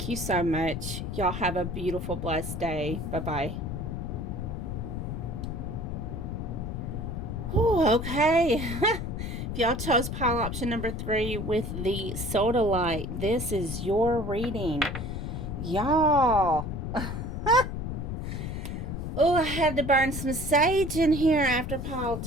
you so much. Y'all have a beautiful, blessed day. Bye-bye. Oh, okay. If y'all chose pile option number 3 with the soda light, this is your reading. Y'all. Oh, I had to burn some sage in here after pile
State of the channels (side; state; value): left; noise; rumble, 4 dB below the sound